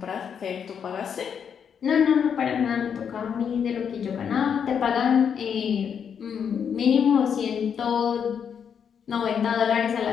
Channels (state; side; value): quieter; right; 7.5 dB